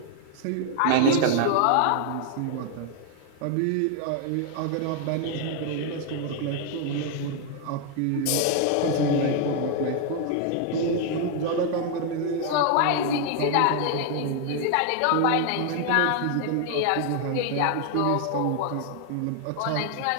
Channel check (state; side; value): different; both; correlation 0.00